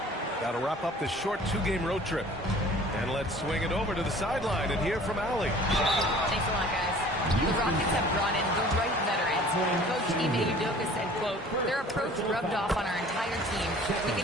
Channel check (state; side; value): normal; both; correlation 0.49